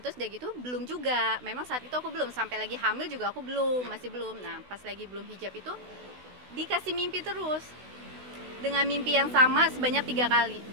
udah gitu belum juga, memang saat itu aku belum, sampai lagi hamil juga aku masih belum. Nah pas lagi belum hijab itu dikasih mimpi terus dengan mimpi yang sama sebanyak 3 kali.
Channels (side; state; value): left; late; 16 ms